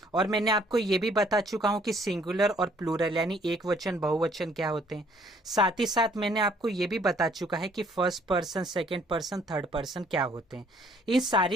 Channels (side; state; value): both; normal; correlation 0.62